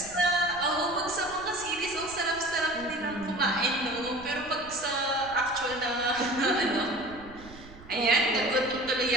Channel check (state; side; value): noise; right; rumble, 19 dB below the sound